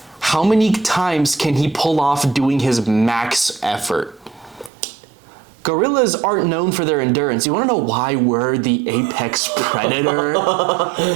how many times can he pull off doing his max effort? Gorillas aren't known for their endurance. You want to know why we're the apex predator?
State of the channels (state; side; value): drops out; left; at 4.7 s